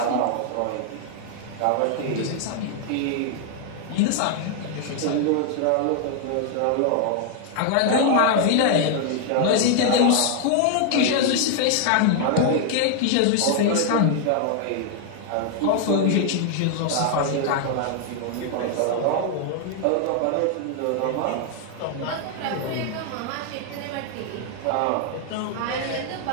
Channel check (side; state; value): both; different; correlation 0.00